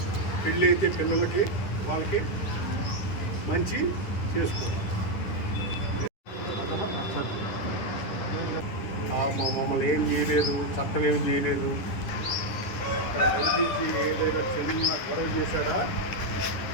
పెళ్ళి అయితే పిల్లలకి వాళ్ళకి మంచి చేసుకోవాలి. మమ్మల్ని ఏం చేయలేదు, చట్టం ఏం చేయలేదు. ఐపీసీ ఏదైనా చిన్న గొడవ చేశాడా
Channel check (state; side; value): late; right; 10 ms